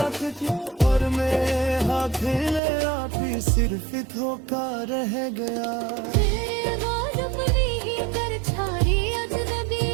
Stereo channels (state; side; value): drops out; left; at 2.6 s